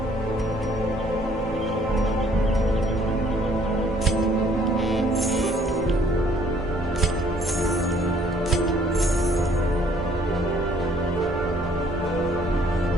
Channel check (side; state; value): both; normal; correlation 0.61